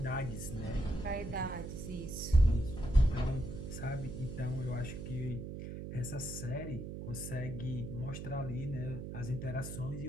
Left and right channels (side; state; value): right; noise; hum, 7 dB below the sound